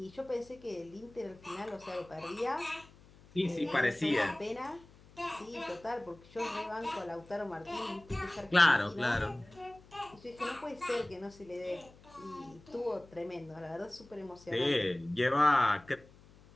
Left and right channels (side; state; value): left; noise; hum, 24 dB below the sound